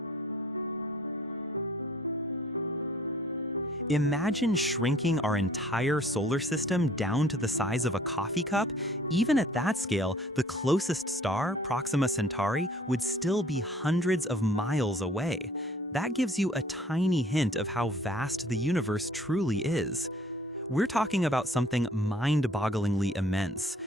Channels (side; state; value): both; normal; correlation 0.55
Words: Imagine shrinking our entire solar system down to the size of a coffee cup. Even at that scale, the closest star, Proxima Centauri, would still be hundreds of miles away. That gives you a tiny hint of how vast the universe truly is. We're talking about something mind-bogglingly immense.